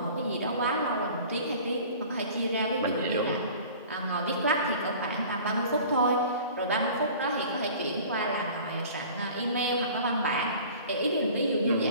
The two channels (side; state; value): both; inverted; correlation -0.44